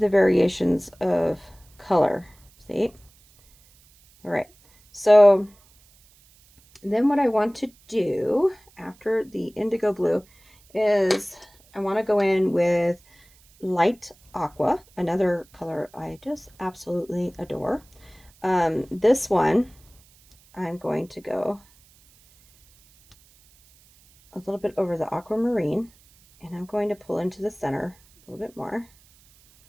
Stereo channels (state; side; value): noise; right; hiss, 29 dB below the sound